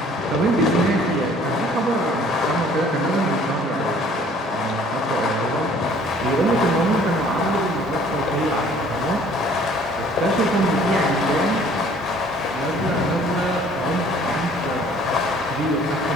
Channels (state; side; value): normal; both; correlation 0.55